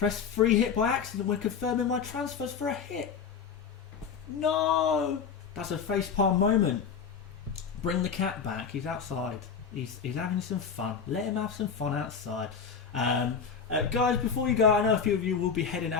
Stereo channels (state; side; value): quieter; right; 6.3 dB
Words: free hit by accident when confirming my transfers for a hit. No! That's a facepalm moment. Bring the cat back. He's outside. He's having some fun. Let him have some fun outside. Guys, before you go, I know a few of you will be heading